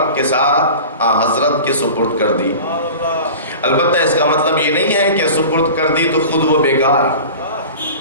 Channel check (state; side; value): inverted; both; correlation -0.37